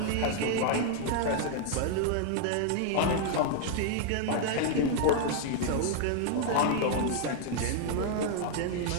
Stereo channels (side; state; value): both; different; correlation 0.00